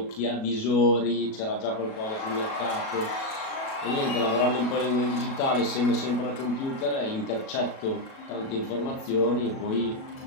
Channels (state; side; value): late; right; 37 ms